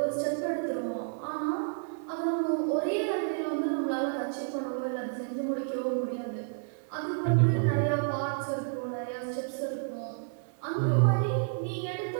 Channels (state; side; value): silent; left; 57 dB below the other